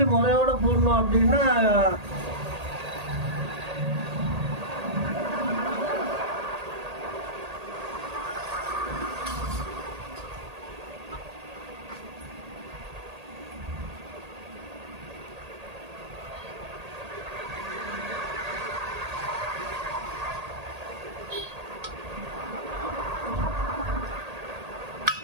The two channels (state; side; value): late; left; 1.8 ms